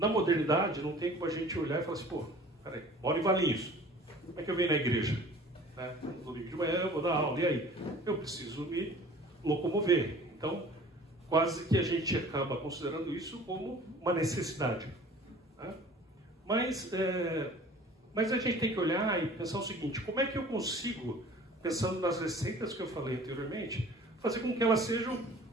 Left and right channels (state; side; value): normal; both; correlation 0.47